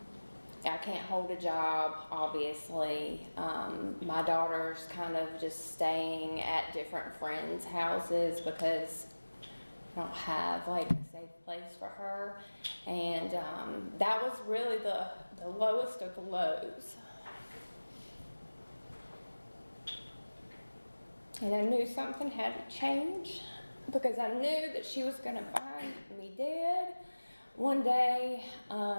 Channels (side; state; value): both; inverted; correlation -1.00